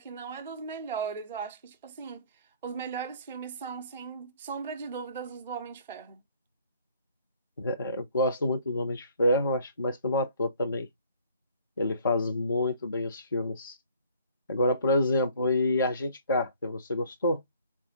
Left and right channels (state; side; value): inverted; both; correlation -0.57